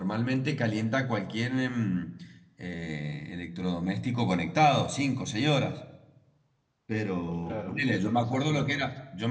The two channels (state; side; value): identical; both; correlation 1.00